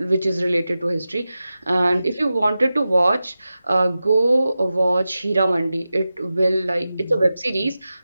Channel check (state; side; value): inverted; both; correlation -0.94